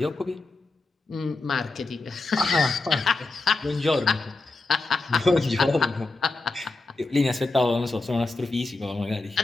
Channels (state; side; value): quieter; right; 3.4 dB